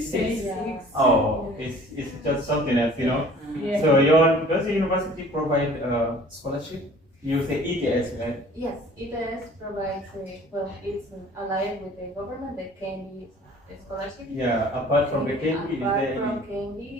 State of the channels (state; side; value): normal; both; correlation 0.49